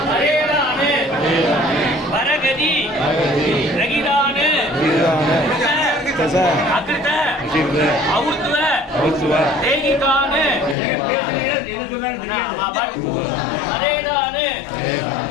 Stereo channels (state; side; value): drops out; right; at 10.8 s